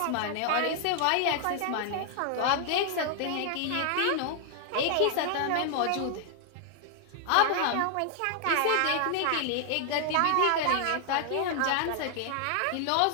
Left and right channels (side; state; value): both; different; correlation 0.00